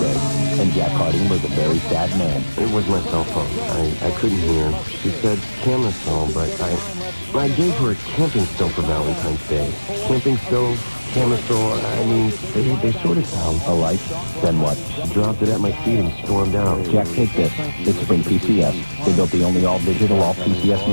and Jack Harding was a very sad man. It was my cell phone. I couldn't hear. She said camera stove, but I gave her a camping stove for Valentine's Day. Camping stove, camera stove, they sort of sound alike. Then what? She dropped it at my feet and stormed out. Jack, take this. It's Sprint PCS. They built the only all-digital, all-PCS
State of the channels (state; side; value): inverted; both; correlation -1.00